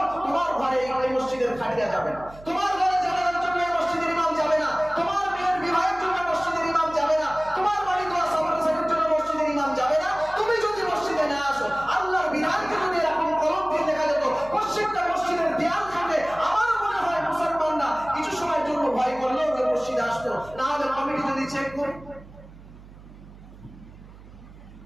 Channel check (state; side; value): noise; right; hum, 20 dB below the sound